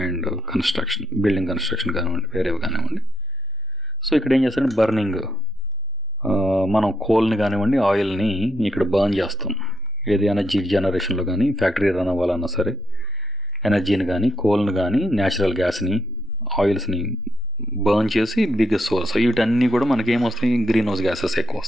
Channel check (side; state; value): both; normal; correlation 0.77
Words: అండ్ కన్స్ట్రక్షన్, బిల్డింగ్ కన్స్ట్రక్షన్ కానివ్వండి, వేరేవి కానివ్వండి. సో ఇక్కడ ఏం చేస్తారంటే బర్నింగ్, మనం కోల్ని కానివ్వండి ఆయిల్ని ఇక్కడ బర్న్ చేస్తాం. ఏది ఎనర్జీ జనరేషన్లో కానీ ఫ్యాక్టరీ రన్ అవ్వాలన్నా సరే ఎనర్జీని కానీ కోల్ని కానీ న్యాచురల్ గ్యాస్ని ఆయిల్స్ని బర్న్ చేసి బిగ్గెస్ట్ సోర్స్. వీటన్నీ కూడా మనకి ఏమొస్తాయి, గ్రీన్ హౌస్ గ్యాసెస్ ఎక్కువ